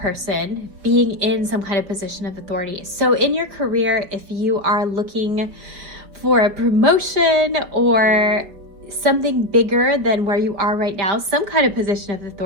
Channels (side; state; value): left; late; 5.5 ms